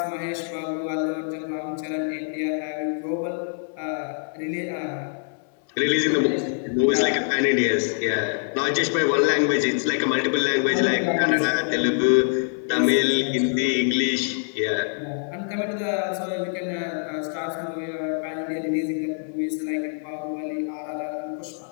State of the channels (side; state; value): right; silent; 60 dB below the other